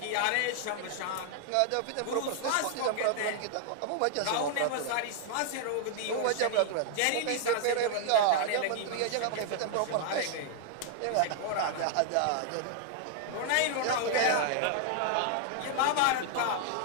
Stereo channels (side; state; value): both; different; correlation -0.01